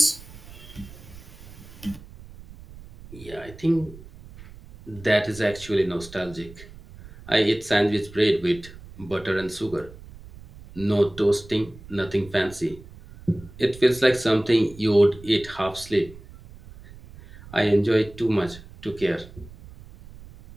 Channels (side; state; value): right; noise; rumble, 18 dB below the sound